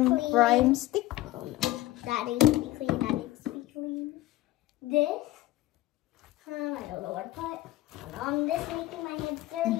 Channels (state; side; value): quieter; right; 16.3 dB